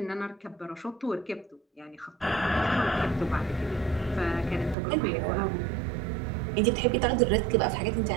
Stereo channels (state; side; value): drops out; left; at 4.8 s